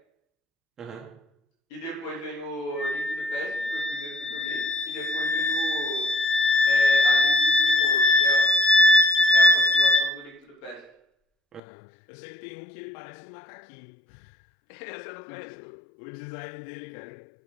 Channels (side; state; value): right; drops out; at 11.6 s